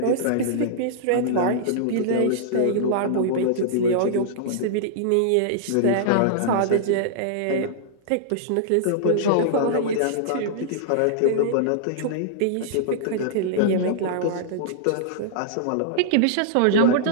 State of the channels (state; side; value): different; both; correlation -0.02